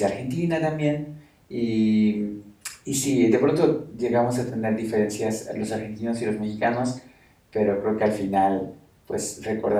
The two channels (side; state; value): both; identical; correlation 1.00